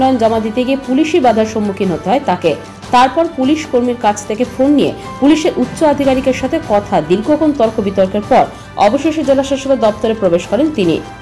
জমা দিতে গিয়ে পুলিশি বাধার সম্মুখীন হতে হয় তাকে। তারপর পুলিশ কর্মীর কাছ থেকে ফোন নিয়ে পুলিশের উচ্চ আধিকারিকের সাথে কথা, দীর্ঘক্ষণ তর্ক বিতর্কের পর অবশেষে জেলা শাসকের দপ্তরে প্রবেশ করেন তিনি।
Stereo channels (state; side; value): identical; both; correlation 1.00